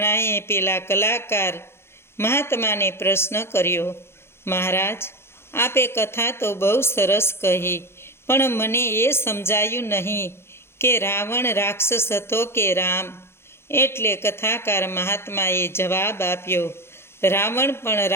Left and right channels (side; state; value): right; late; 0.12 ms